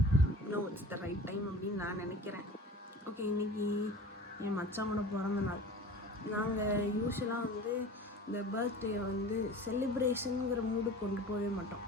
No, it's the right time அப்படின்னு நான் நினைக்கிறேன். ஓகே, இன்றைக்கி என் மச்சானோட பிறந்த நாள். நாங்கள் யூஸ்வலாக வந்து இந்த பர்த்டே வந்து செலிப்ரேஷனுங்கிற மூடு கொண்டு போகவே மாட்டோம்.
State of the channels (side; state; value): both; normal; correlation 0.41